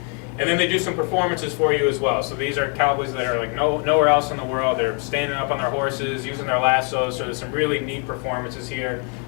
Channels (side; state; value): right; quieter; 34.5 dB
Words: And then they do some performances for you as well. So these are cowboys that are like nowhere else in the world. They're standing up on their horses, using their lassos. So there's some really neat performances here